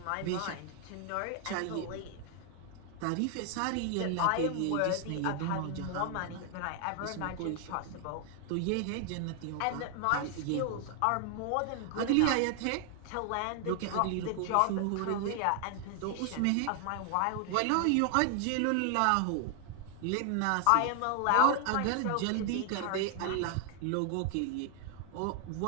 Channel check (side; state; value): both; different; correlation 0.00